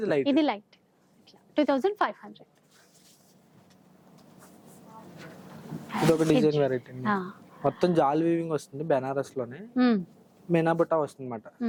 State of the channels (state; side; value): identical; both; correlation 1.00